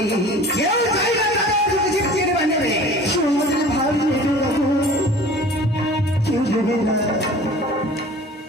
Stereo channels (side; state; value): both; normal; correlation 0.44